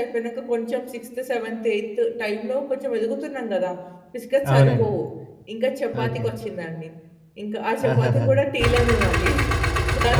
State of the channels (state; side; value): identical; both; correlation 1.00